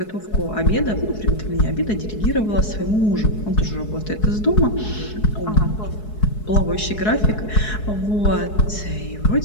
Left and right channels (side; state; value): right; late; 4.7 ms